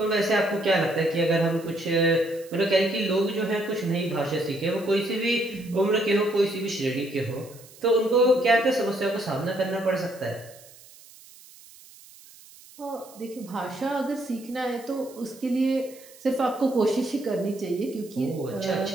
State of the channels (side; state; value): right; noise; hiss, 22 dB below the sound